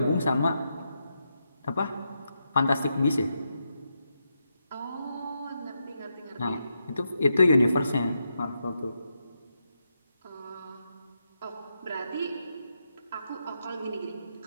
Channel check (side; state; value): both; inverted; correlation -0.84